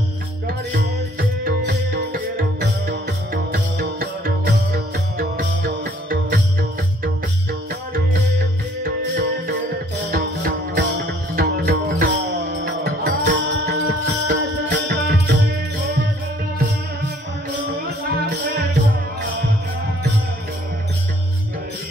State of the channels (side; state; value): both; normal; correlation 0.60